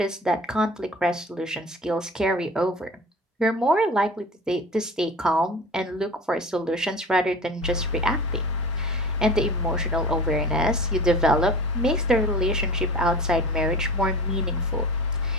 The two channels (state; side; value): normal; both; correlation 0.37